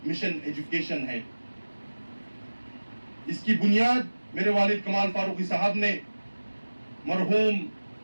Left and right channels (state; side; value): inverted; both; correlation -1.00